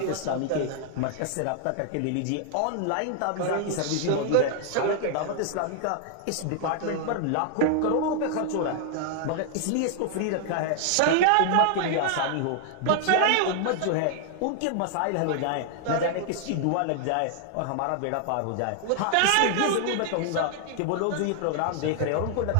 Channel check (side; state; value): both; different; correlation 0.00